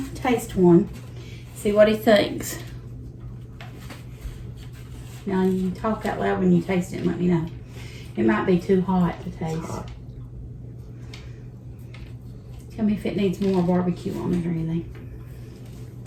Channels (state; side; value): identical; both; correlation 1.00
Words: taste one. See what he thinks. Now, you can talk out loud when you taste it and let me know. It might be too hot to taste. Tell me if it needs more barbecue on it or anything.